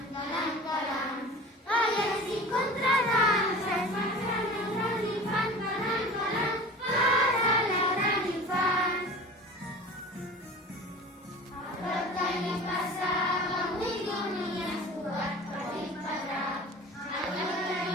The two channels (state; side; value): normal; both; correlation 0.38